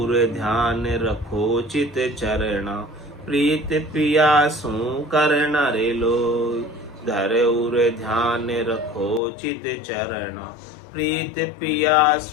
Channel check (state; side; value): drops out; right; at 9.2 s